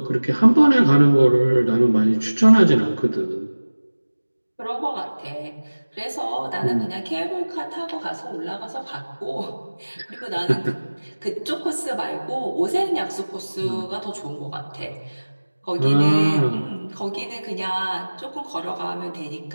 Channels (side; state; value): both; inverted; correlation -1.00